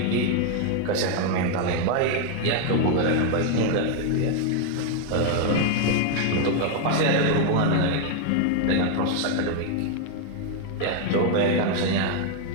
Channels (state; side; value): different; both; correlation 0.00